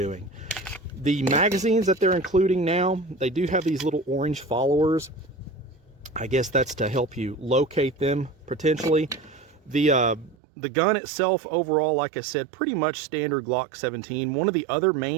The magazines that they're including now, they do have these little orange followers. I guess that's to help you locate them potentially. The gun itself overall, like I said, pretty much standard Glock 17. One of the other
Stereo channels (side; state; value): left; drops out; at 10.4 s